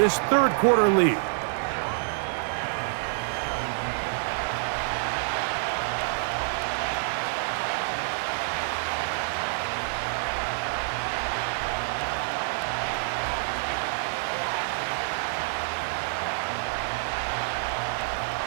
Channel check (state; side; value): silent; left; digital silence